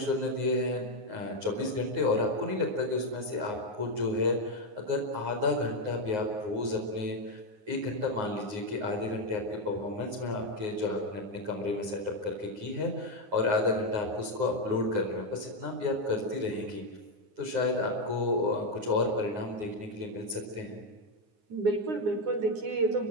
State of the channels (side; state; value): left; late; 9.6 ms